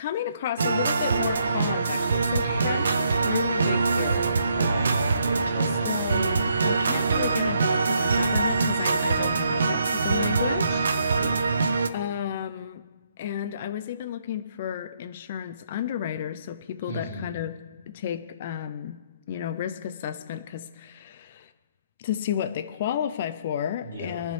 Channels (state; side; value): inverted; both; correlation -0.72